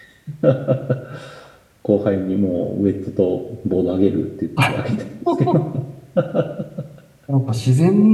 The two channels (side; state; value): both; identical; correlation 1.00